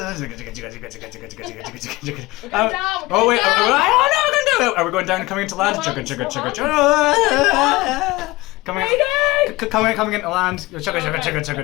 Oh wait, I don't know. Are we going down and coming into land? Coming into land.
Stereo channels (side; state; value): right; quieter; 20.7 dB